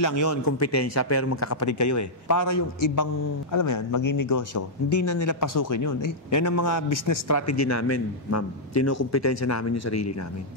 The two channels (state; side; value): normal; both; correlation -0.08